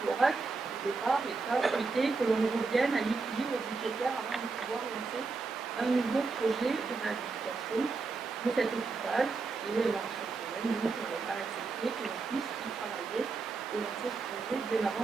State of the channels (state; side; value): quieter; left; 4.2 dB